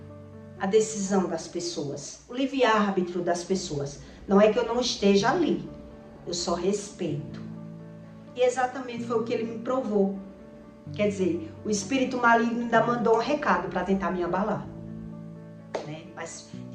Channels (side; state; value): both; identical; correlation 1.00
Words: a decisão das pessoas. O livre-arbítrio das pessoas. Não é que eu não esteja ali. Eu só respeito. E exatamente foi o que ele me provou. Quer dizer, o espírito maligno ainda mandou um recado para tentar me abalar. Né? Mas